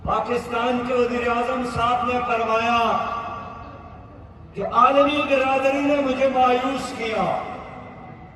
پاکستان کے وزیر اعظم صاحب نے فرمایا کہ عالمی برادری نے مجھے مایوس کیا،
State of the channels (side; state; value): both; identical; correlation 1.00